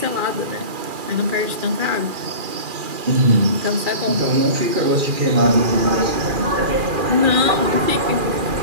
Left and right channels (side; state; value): left; late; 2.4 ms